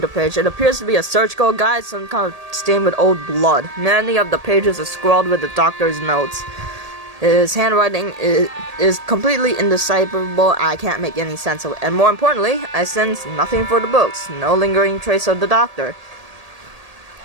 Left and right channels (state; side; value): late; left; 1.8 ms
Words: page. It appears to be a surgical guide, some kind of stained with old blood. Many of the pages are scrawled with the doctor's notes. His handwriting is completely indecipherable. I can't make any sense of it. And more importantly, I sense nothing for the books. No lingering trace of the doctor.